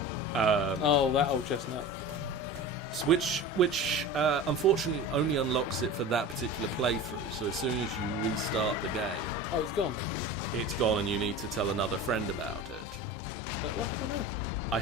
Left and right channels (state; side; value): normal; both; correlation 0.33